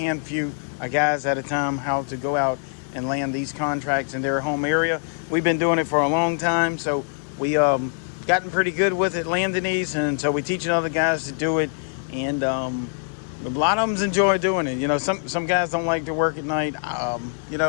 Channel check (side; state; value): right; silent; 63 dB below the other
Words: of guys at a time, how to go out and land these contracts in their home area. We've been doing it for a long time, so we gotten pretty good with it, landing these, and so we teaching other guys to do it, and a lot of them enjoy doing it. You know, some guys don't like to work at night. You